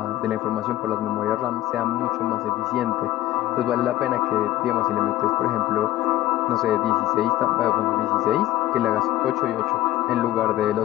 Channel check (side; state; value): right; quieter; 14.9 dB